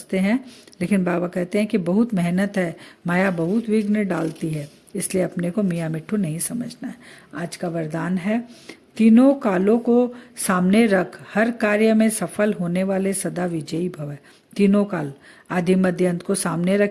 हैं, लेकिन बाबा कहते हैं कि बहुत मेहनत है, माया बहुत विघ्न डालती है, इसलिए अपने को मियाँ मिट्ठू नहीं समझना है। आज का वरदान है, तीनों कालों को सामने रख, हर कार्य में सफल होने वाले सदा विजयी भव। तीनों काल आदि मध्य अंत को सामने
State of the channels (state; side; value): identical; both; correlation 1.00